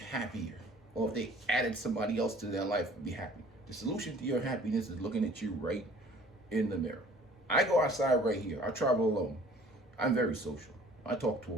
Or if they added somebody else to their life, they'd be happy. The solution to your happiness is looking at you right in the mirror. I go outside right here. I travel alone. I'm very social. I talk to a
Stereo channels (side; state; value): both; normal; correlation 0.51